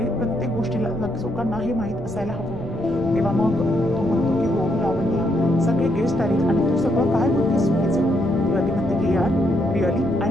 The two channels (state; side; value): noise; left; rumble, 18 dB below the sound